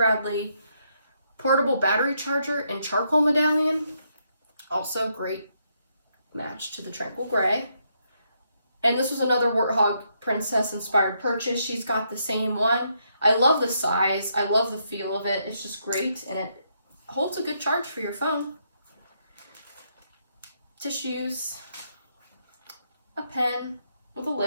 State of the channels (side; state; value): both; inverted; correlation -0.77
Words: portable battery charger in charcoal medallion. Also great match to the Tranquil gray. And this was another Warthog Princess inspired purchase. She's got the same one. I love the size. I love the feel of it. It's just great, and it holds a good charge for your phone. Tissues, a pen with a